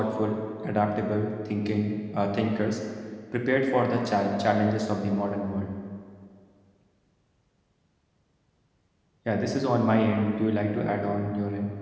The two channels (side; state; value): both; identical; correlation 1.00